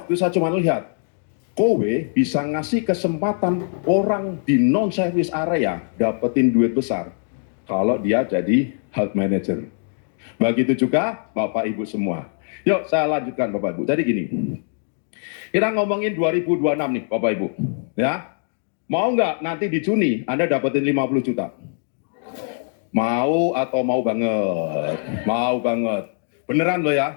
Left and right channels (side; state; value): right; silent; 60 dB below the other